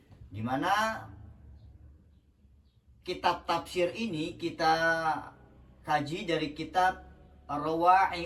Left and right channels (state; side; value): identical; both; correlation 1.00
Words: di mana kitab tafsir ini kita kaji dari kitab